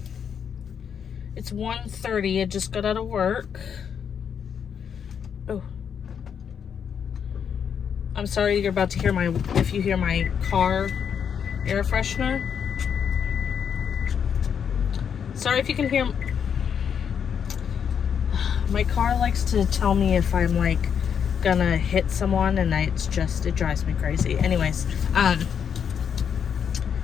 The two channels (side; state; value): right; quieter; 7.6 dB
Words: it's 1:30. I just got out of work. Oh, I'm sorry you're about to hear if you hear my car air freshener. Sorry if you can hear. My car likes to tell me if I'm like gonna hit someone, and it drives me crazy. Anyways,